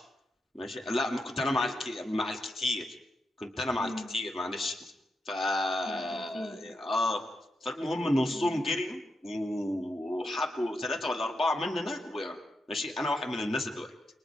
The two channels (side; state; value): both; normal; correlation 0.85